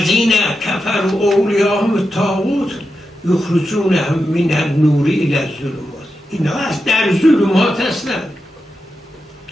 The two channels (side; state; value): both; normal; correlation 0.88